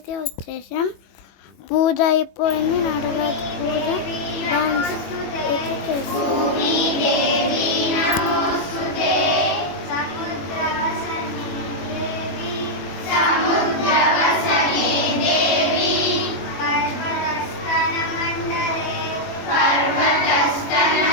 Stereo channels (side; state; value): right; late; 21 ms